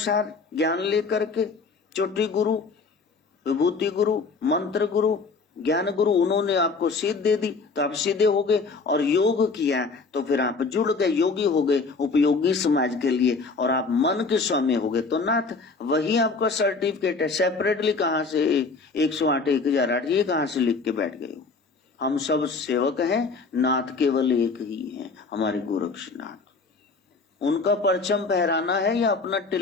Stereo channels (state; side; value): quieter; right; 4.3 dB